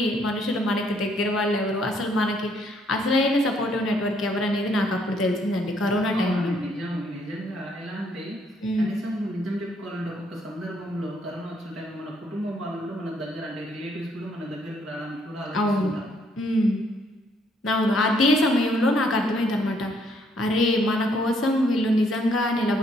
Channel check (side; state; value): both; normal; correlation 0.69